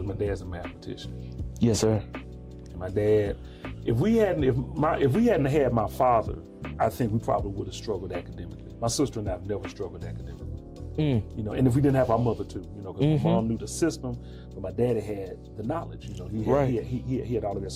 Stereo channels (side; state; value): both; identical; correlation 1.00